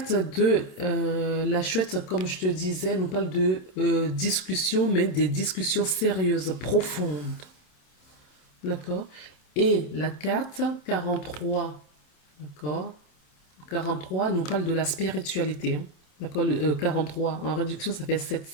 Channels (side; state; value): right; late; 27 ms